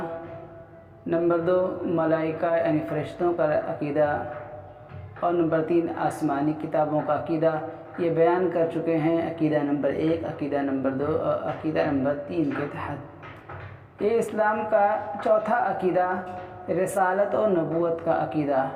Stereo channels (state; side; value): identical; both; correlation 1.00